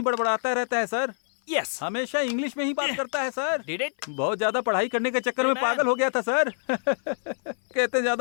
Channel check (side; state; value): right; silent; 56 dB below the other